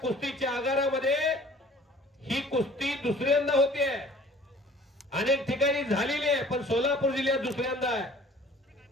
आगारामध्ये ही कुस्ती दुसऱ्यांदा होते. अनेक ठिकाणी झालेली आहे, पण सोलापूर जिल्ह्यात दुसऱ्यांदा आहे.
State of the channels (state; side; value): normal; both; correlation 0.50